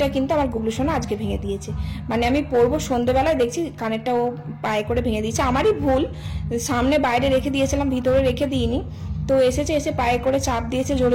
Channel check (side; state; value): both; identical; correlation 1.00